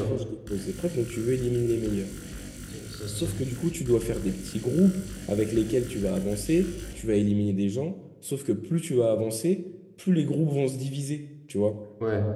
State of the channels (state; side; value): identical; both; correlation 1.00